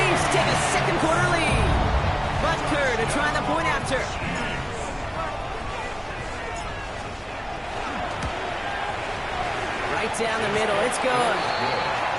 take a 2nd quarter lead. Butker to try the point after. Right down the middle, it's good.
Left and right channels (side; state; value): both; identical; correlation 1.00